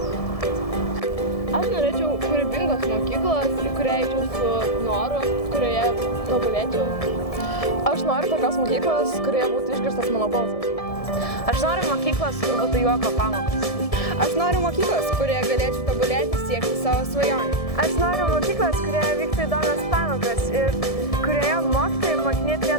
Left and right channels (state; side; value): late; right; 1.7 ms